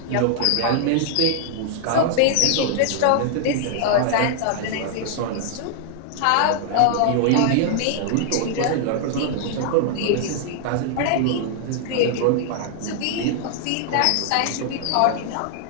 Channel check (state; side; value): different; both; correlation -0.01